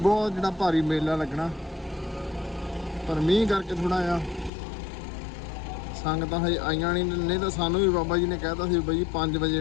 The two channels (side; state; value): right; drops out; at 4.5 s